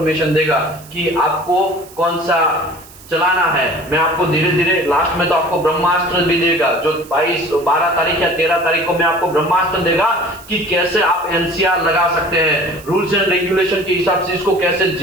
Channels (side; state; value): right; noise; hiss, 21 dB below the sound